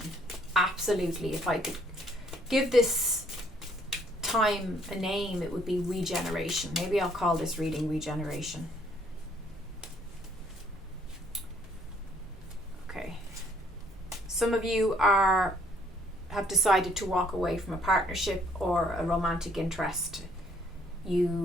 Absolutely. If I could give this time a name, it would be regeneration. Maybe I'll call this reading regeneration. Okay. Some of you have decided to walk away from a partnership or a romantic interest.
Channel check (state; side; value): normal; both; correlation 0.65